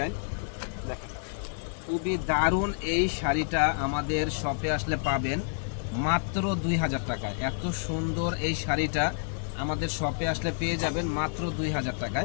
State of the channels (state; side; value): silent; right; digital silence